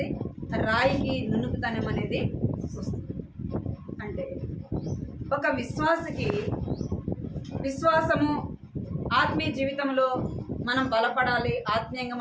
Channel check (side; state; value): both; identical; correlation 1.00